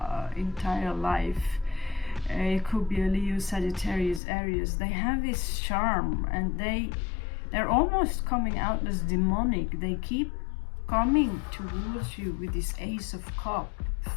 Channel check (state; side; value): drops out; right; at 4.2 s